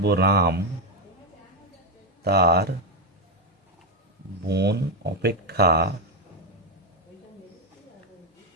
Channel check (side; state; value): both; normal; correlation 0.06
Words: রাম তার বোন অপেক্ষা